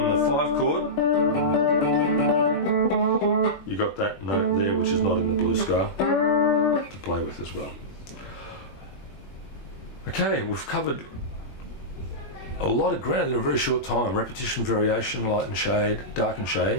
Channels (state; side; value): late; right; 21 ms